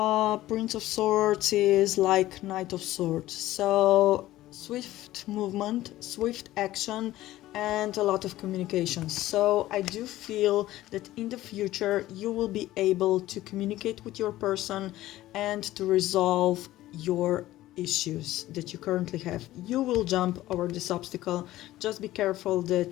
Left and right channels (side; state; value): right; quieter; 15.5 dB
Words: Prince of Swords is like Knight of Swords. So swift movement, swift action, and a lot of communication. So I do feel that in the future you will be able to communicate with your person and to resolve your issues that you currently have. You will jump over this obstacle. Just be careful